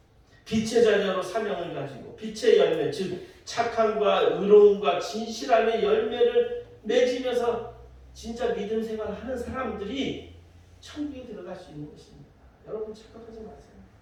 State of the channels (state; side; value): identical; both; correlation 1.00